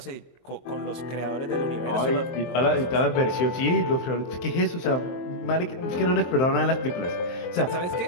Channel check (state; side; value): late; right; 23 ms